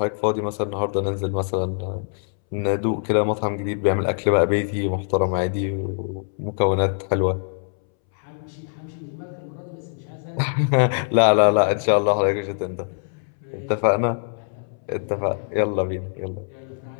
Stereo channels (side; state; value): right; silent; 63 dB below the other